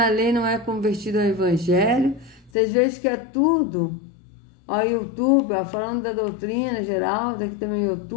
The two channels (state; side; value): drops out; right; at 2.5 s